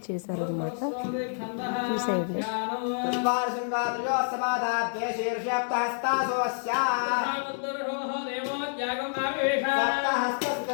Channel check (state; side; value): silent; right; digital silence